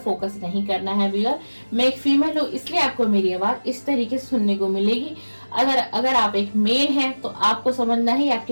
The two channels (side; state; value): both; inverted; correlation -1.00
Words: नहीं करना है व्यूअर। मैं एक फीमेल हूँ इसलिए आपको मेरी आवाज इस तरीके से सुनने को मिलेगी। अगर आप एक मेल हैं तो आपको समझना है ये